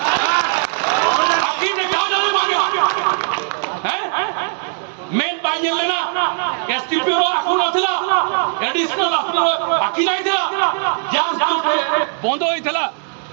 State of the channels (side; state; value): left; silent; 60 dB below the other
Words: আকি দেখা যাবে মাগে হ্যাঁ মেন পাইলে না এসটিপি র আকু নথিলা এডিশনাল আকি নাই থিলা যাস বন্ধ হইଥିଲା